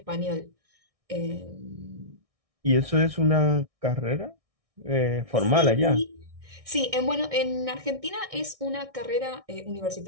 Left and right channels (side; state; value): left; late; 1.6 ms